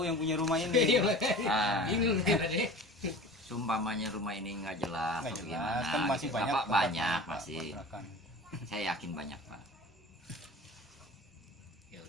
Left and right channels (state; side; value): normal; both; correlation 0.38